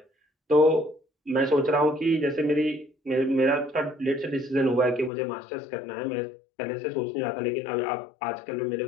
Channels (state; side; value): drops out; right; at 5.1 s